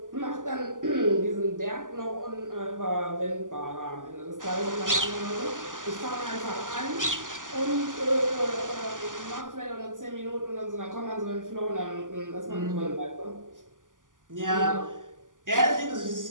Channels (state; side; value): late; left; 0.88 ms